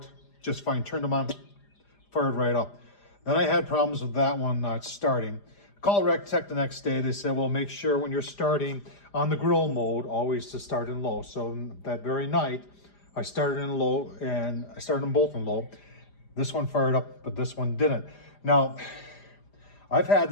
just fine. Turned them on, fired right up. Then I had problems with that one not starting. Call Recteq the next day. They said, well, make sure when you're starting on the grill mode, always to start in low. So that very night, I started in low, and I started them both in low. This one fired up, but this one didn't. Now, I've had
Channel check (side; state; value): right; late; 5.0 ms